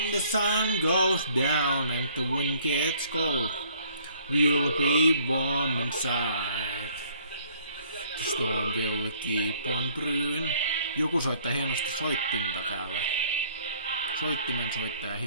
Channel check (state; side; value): inverted; both; correlation -0.59